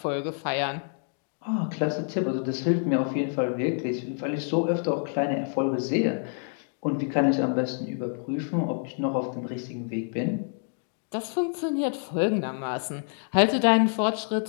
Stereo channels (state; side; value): silent; right; 57 dB below the other